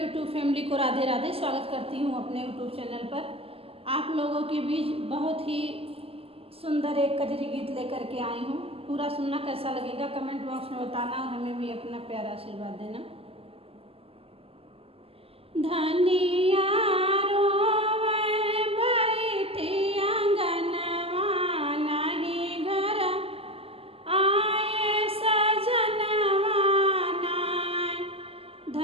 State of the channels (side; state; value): left; late; 0.28 ms